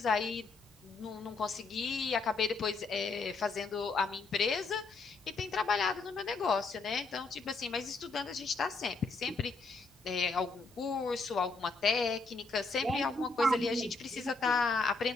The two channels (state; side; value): quieter; right; 3.9 dB